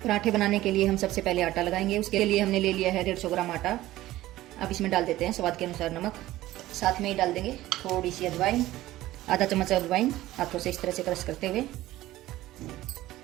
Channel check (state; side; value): quieter; left; 15.9 dB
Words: पराठे बनाने के लिए हम सबसे पहले आटा लगाएंगे। उसके लिए हमने ले लिया है 150 ग्राम आटा। अब इसमें डाल देते हैं स्वाद के अनुसार नमक, साथ में ही डाल देंगे थोड़ी सी अजवाइन, आधा चम्मच अजवाइन हाथों से इस तरह से क्रश करते हुए।